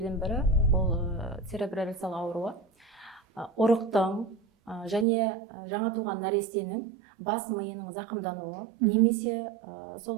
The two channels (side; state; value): left; drops out; at 5.1 s